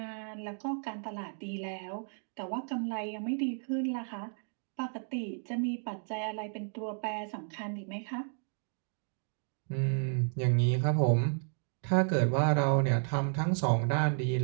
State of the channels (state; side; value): silent; left; 56 dB below the other